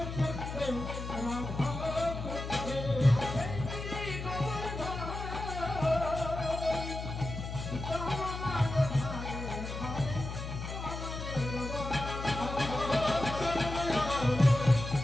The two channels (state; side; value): noise; left; hum, 7 dB below the sound